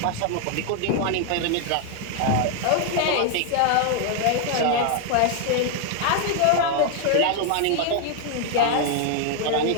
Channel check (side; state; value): both; different; correlation 0.00